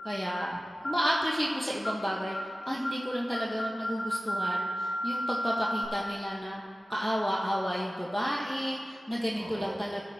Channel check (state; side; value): normal; both; correlation 0.96